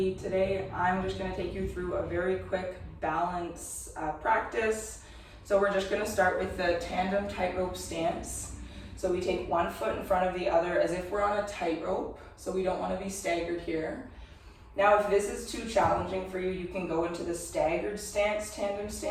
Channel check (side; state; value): both; identical; correlation 1.00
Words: today I'm just going to take you through a very quick balance practice. So we're just going to start with the tandem tightrope stance. So we take one foot in front of the other as if we're on a tightrope, so we don't want to be staggered here. Now if this is too challenging for you, you can go into the staggered stance, tandem